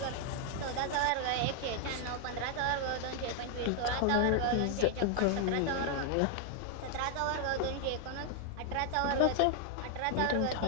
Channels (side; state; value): both; different; correlation 0.00